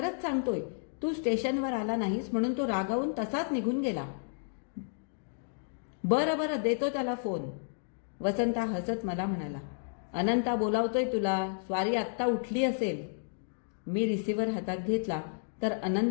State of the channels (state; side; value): silent; right; digital silence